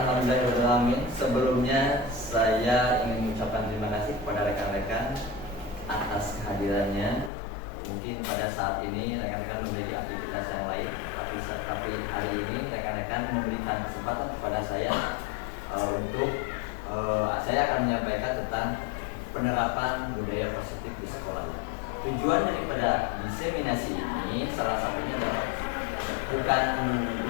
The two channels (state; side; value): drops out; right; at 7.3 s